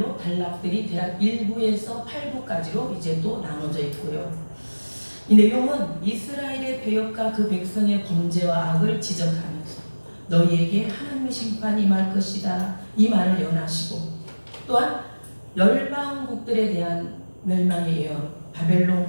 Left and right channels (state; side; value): inverted; both; correlation -1.00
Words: 단락들이 대략 1부에서 8부까지로 이제 또 나눠져 있고요. 이 내용은 이스라엘의 배역과 그 백성의 범죄와 악을 지적하면서 너희에게 하나님의 심판이 임할 것이다 이 말을 예언하시고, 또한 열방국들에 대한 멸망의 예언,